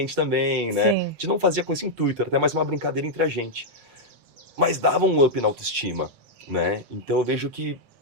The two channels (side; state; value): left; late; 7.3 ms